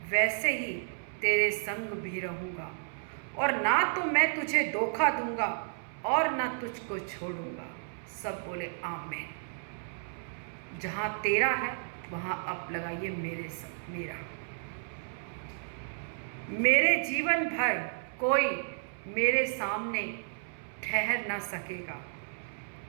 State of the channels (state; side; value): silent; left; 56 dB below the other